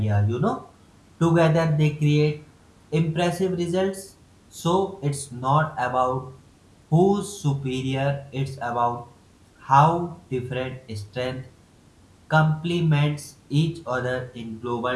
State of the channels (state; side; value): identical; both; correlation 1.00